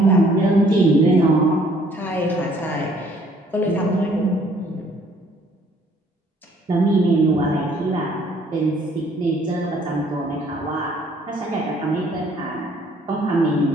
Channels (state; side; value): normal; both; correlation 0.61